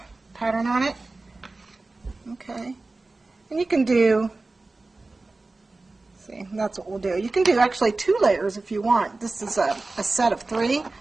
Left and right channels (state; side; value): quieter; left; 3.3 dB